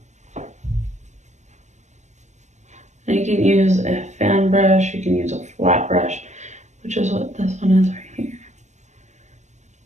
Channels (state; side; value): late; left; 0.34 ms